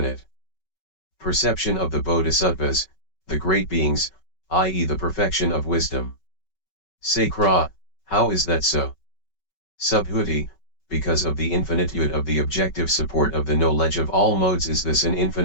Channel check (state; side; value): late; right; 5.3 ms